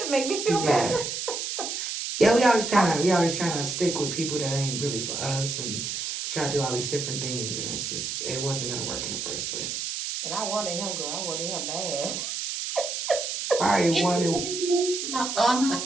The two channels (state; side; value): noise; right; hiss, 3 dB below the sound